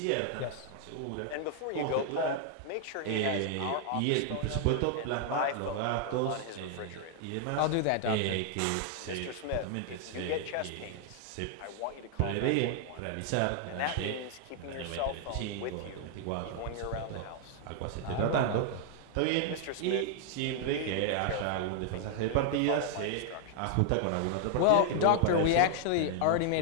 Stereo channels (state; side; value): different; both; correlation 0.00